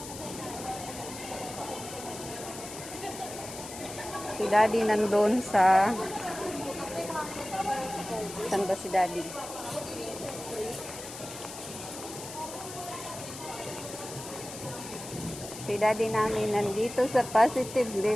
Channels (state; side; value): noise; left; hiss, 11 dB below the sound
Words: Si Daddy nandun sa... Saan ba si Daddy? Si Daddy namin nandito sa Positive